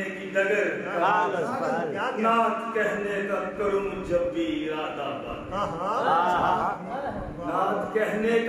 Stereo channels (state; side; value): identical; both; correlation 1.00